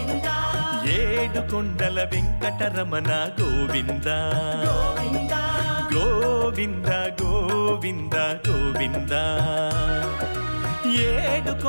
ఏడు కొండల వెంకటరమణ గోవింద గోవింద గోవింద గోవింద గోవింద ఏడు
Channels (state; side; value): inverted; both; correlation -1.00